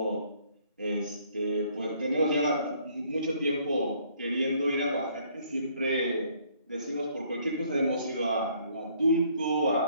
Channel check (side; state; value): both; inverted; correlation -0.63